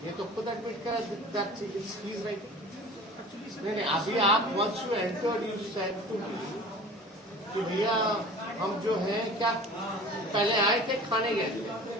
ये तो खुद एडमिट करा दैट ही इज राइट। नहीं अभी आप once you enter you said to कि भैया हम जो है क्या पहले आए थे खाने गए थे।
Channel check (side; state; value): both; normal; correlation 0.41